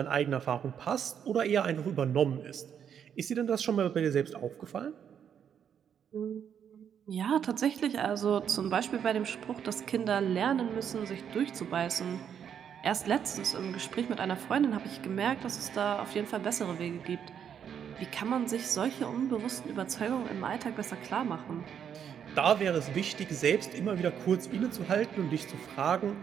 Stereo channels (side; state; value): left; quieter; 8.3 dB